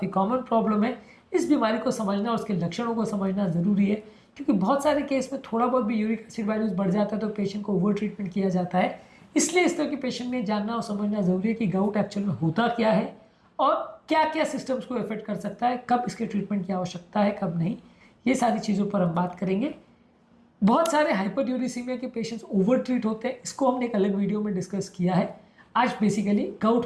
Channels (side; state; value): both; identical; correlation 1.00